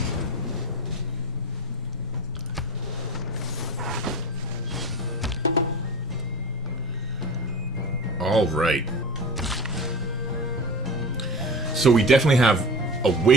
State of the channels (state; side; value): normal; both; correlation 0.30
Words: All right. So we definitely have a